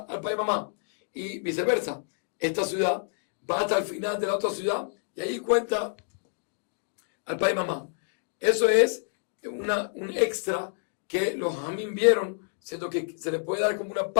al pai y mamá, y viceversa. Esta ciudad va hasta el final de la otra ciudad y ahí cuenta al pai y mamá. Eso es un extra que los jamín vieron, siento que se le puede dar como una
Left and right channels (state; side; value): silent; right; digital silence